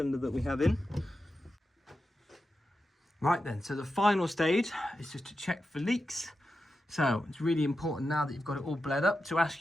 that we have in. Right then, so the final stage is just to check for leaks. So it's really important now that you've got it all bled up to ask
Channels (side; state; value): both; normal; correlation 0.90